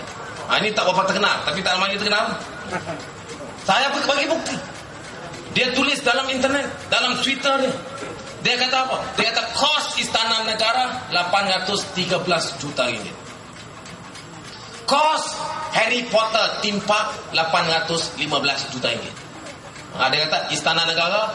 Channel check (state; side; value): identical; both; correlation 1.00